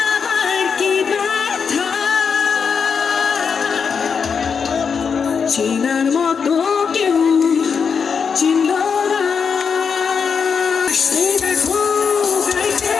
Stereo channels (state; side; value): quieter; right; 6.2 dB